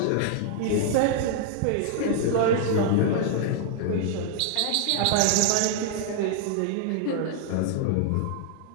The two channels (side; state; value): both; different; correlation -0.01